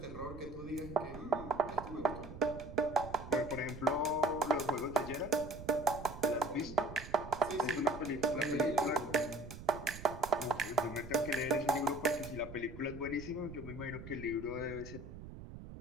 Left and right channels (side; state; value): right; noise; rumble, 12 dB below the sound